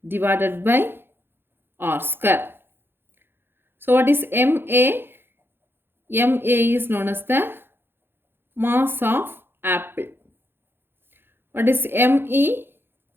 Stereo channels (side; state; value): left; late; 0.10 ms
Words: divided by R square. So what is M A? M A is known as the mass of apple. What is M E?